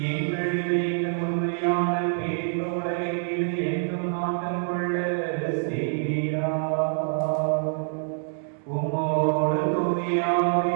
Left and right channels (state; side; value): silent; left; digital silence